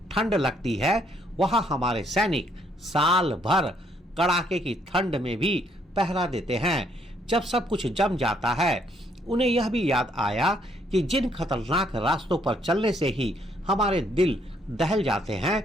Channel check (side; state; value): both; normal; correlation 0.69